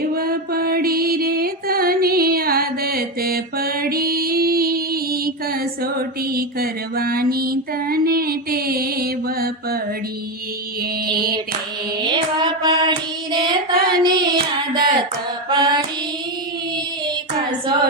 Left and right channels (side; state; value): both; normal; correlation 0.12